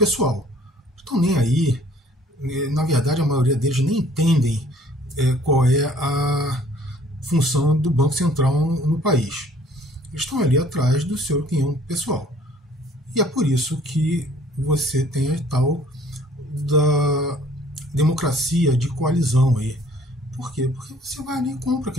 Estão nem aí. Na verdade, a maioria deles nem entendem qual é a função do Banco Central no país. Eles estão ali atrás do seu quinhão pessoal. E é por isso que você tem a tal da democracia de coalizão aí. Por quê? Porque você vai ali e compra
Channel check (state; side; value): normal; both; correlation 0.56